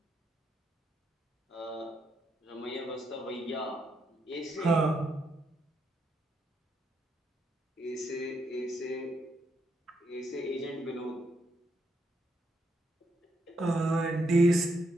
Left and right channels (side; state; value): both; normal; correlation 0.78